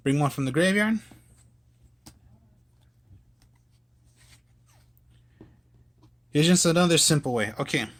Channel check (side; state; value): both; identical; correlation 1.00